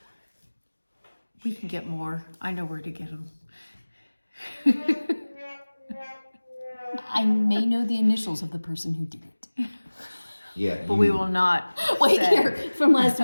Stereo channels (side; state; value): both; inverted; correlation -1.00